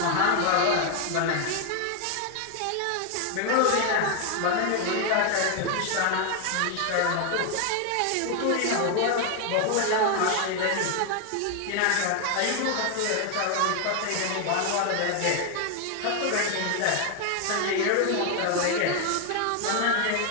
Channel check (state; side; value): different; both; correlation 0.01